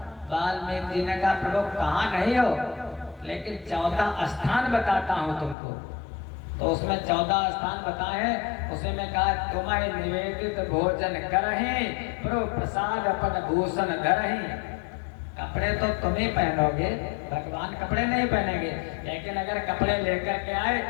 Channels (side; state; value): right; drops out; at 5.6 s